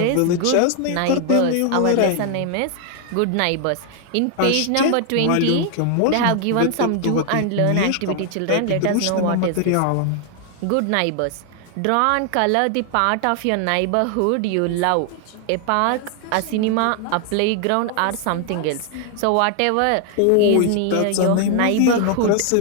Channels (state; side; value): different; both; correlation 0.00